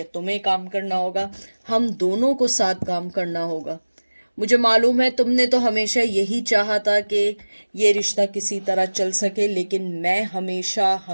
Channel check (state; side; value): inverted; both; correlation -1.00